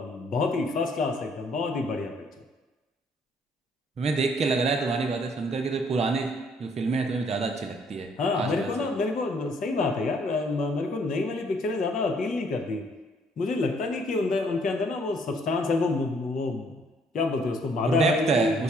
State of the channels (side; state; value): both; normal; correlation 0.65